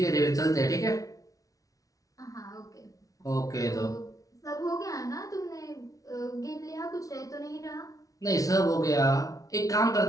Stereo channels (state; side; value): late; right; 0.17 ms